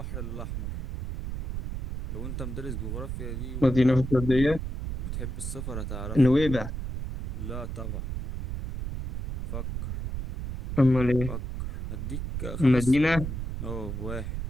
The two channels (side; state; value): right; noise; rumble, 5 dB below the sound